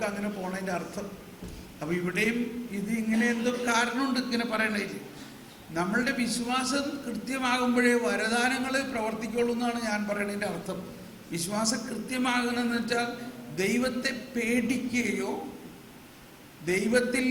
അങ്ങനെ പോണതിൻ്റെ അർത്ഥം. അപ്പൊ ഇവിടെയും ഇത് ഇങ്ങനെ എന്തോ കാരണമുണ്ട് ഇങ്ങനെ പറയണേ. നമ്മളുടെ വിശ്വാസം കൃത്യമാകുമ്പോഴേ വരദാനങ്ങൾ പ്രവർത്തിക്കുള്ളൂ എന്നാണ് ഞാൻ പറയുന്നതിൻ്റെ അർത്ഥം. വിശ്വാസം കൃത്യമാകണമെന്ന് വെച്ചാൽ ദൈവത്തെ പേടിക്കുകയോ ദൈവത്തിൽ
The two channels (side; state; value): both; identical; correlation 1.00